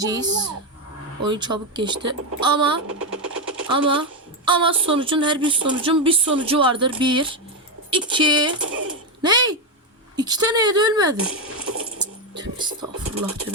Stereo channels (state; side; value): normal; both; correlation 0.07